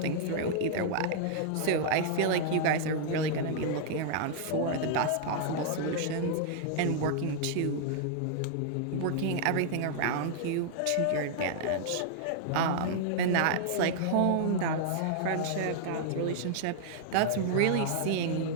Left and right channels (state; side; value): different; both; correlation -0.01